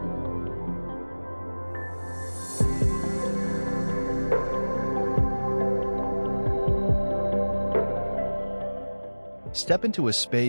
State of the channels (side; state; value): both; inverted; correlation -1.00